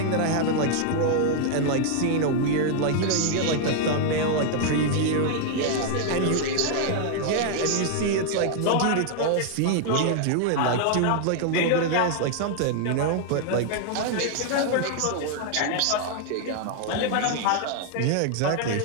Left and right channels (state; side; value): different; both; correlation 0.00